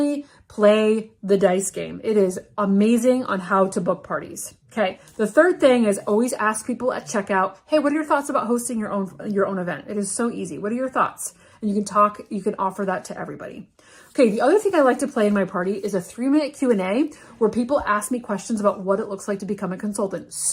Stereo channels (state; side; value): identical; both; correlation 1.00